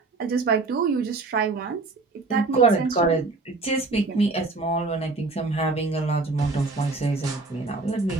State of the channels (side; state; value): left; quieter; 3.6 dB